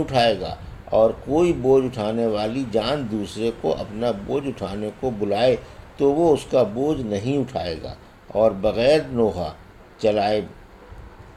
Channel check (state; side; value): identical; both; correlation 1.00